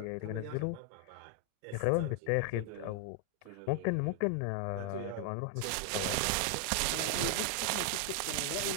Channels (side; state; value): both; different; correlation 0.00